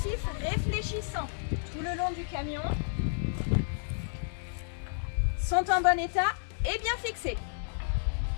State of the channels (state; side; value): silent; right; digital silence